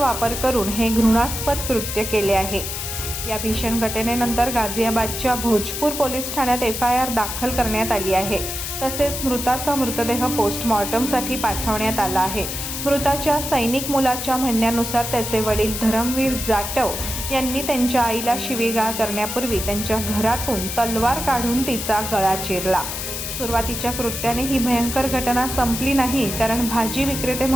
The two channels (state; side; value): noise; left; hiss, 5 dB below the sound